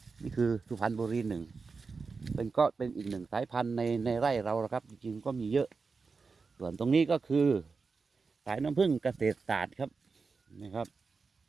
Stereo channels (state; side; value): quieter; left; 4.6 dB